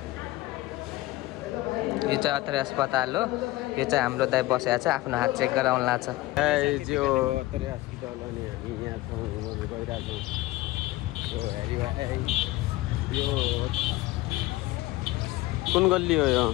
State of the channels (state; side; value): quieter; right; 18.2 dB